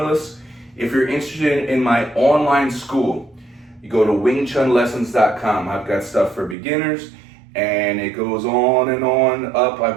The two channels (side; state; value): left; drops out; at 6.6 s